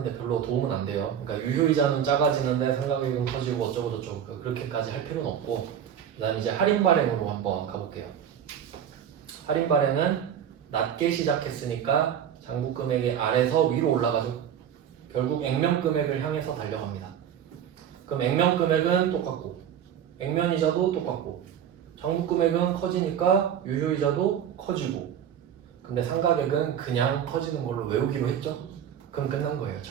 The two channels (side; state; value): left; quieter; 9.1 dB